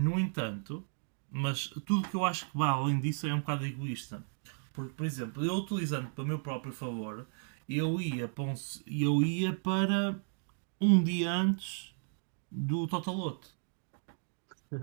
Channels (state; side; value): silent; left; 55 dB below the other